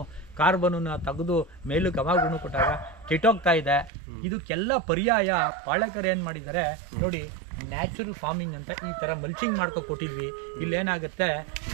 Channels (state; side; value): drops out; left; at 3.9 s